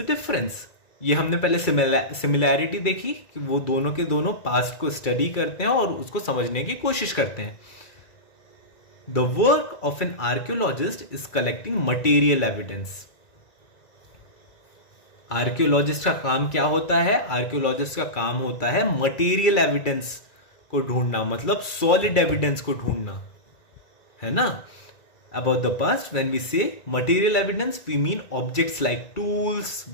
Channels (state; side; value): late; right; 1.9 ms